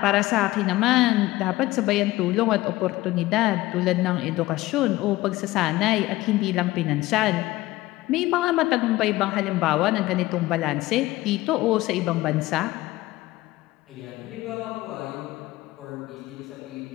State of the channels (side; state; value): right; quieter; 17.9 dB